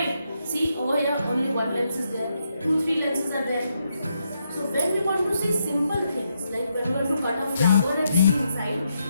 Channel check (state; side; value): inverted; both; correlation -0.80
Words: See, over here only one lens is there. 2, 3 lenses are there. So when we want to see simple things, like when we want to cut a flower and see inside,